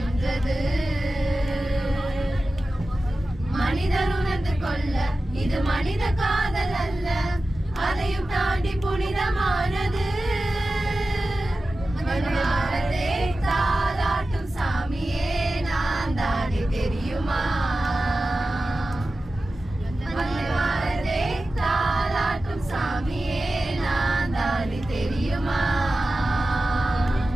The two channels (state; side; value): normal; both; correlation 0.94